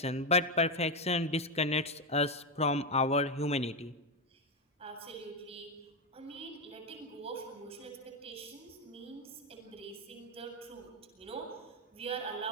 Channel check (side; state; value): both; normal; correlation 0.08